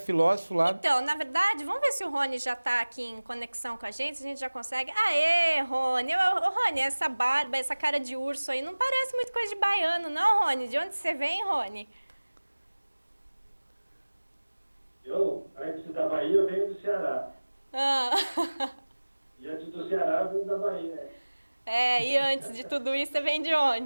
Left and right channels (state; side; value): inverted; both; correlation -1.00